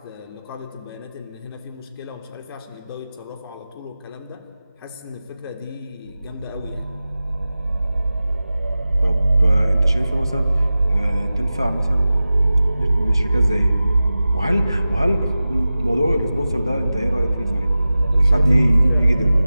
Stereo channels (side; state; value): both; inverted; correlation -0.95